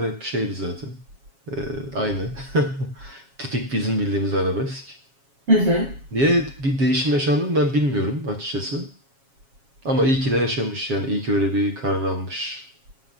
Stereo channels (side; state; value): left; late; 7.3 ms